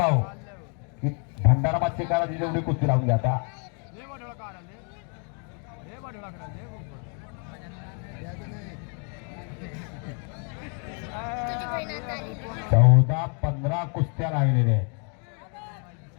भंडारा मच्छीकाराची जेवढी कुस्ती लावून घ्या आता. 14-15 कुस्त्या लागलेल्या आहेत.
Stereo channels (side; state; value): right; quieter; 39.8 dB